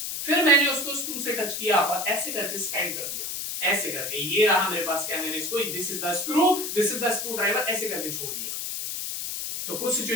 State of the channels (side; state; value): left; noise; hiss, 4 dB below the sound